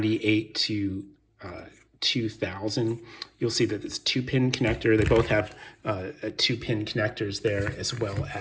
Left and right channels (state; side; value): identical; both; correlation 1.00